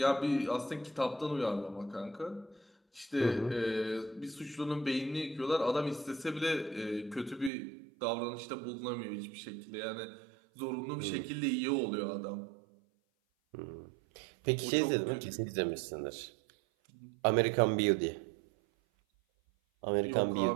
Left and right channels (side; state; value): left; drops out; at 7.5 s